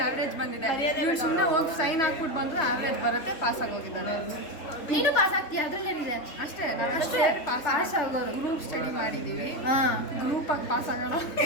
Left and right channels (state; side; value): late; right; 3.4 ms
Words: ಆವ್ರೇಜ್ ಬಂದಿದೆ. ಇವಳು ಸುಮ್ಮನೆ ಹೋಗಿ ಸೈನ್ ಹಾಕ್ಬಿಟ್ಟು ಬಂದ್ರೆ ಆವ್ರೇಜ್ ಬರುತ್ತೆ, ಪಾಸ್ ಆಗೋಗಿದ್ದಾನೆ. ನೀನು ಪಾಸ್ ಆಗ್ತೀಯ ಅದ್ರಲ್ಲೇನಿದೆ? ಅಷ್ಟೇ ಅಷ್ಟೇ ಪಾಸ್ ಆಗೋರು. ಗ್ರೂಪ್ ಸ್ಟಡಿ ಮಾಡಿದ್ದೀವಿ. ಹಾಂ ಗ್ರೂಪಾಗಿ ಪಾಸ್ ಆಗೋಣ.